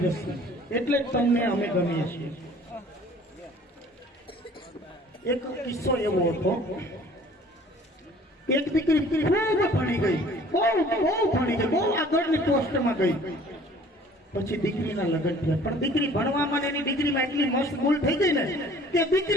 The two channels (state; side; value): normal; both; correlation 0.52